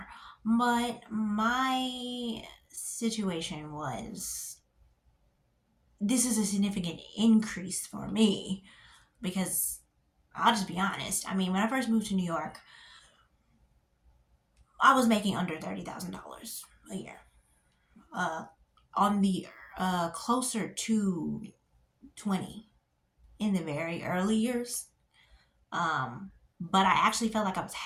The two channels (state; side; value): identical; both; correlation 1.00